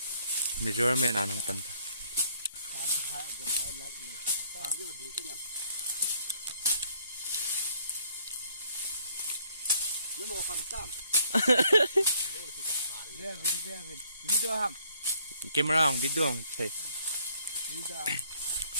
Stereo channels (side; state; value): both; inverted; correlation -0.64